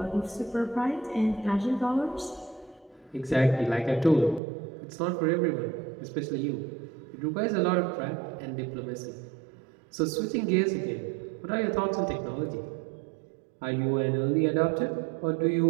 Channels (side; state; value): left; drops out; at 4.4 s